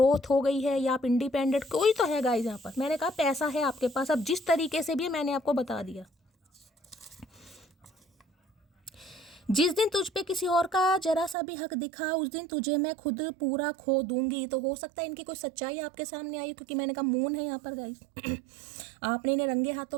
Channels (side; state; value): left; drops out; at 11.4 s